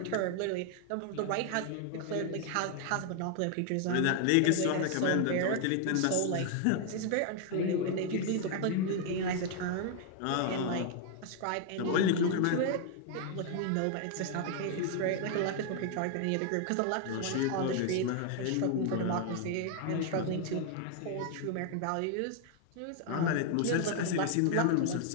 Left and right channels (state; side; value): different; both; correlation 0.00